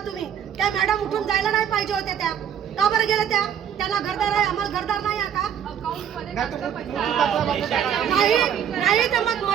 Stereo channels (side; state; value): left; quieter; 8.9 dB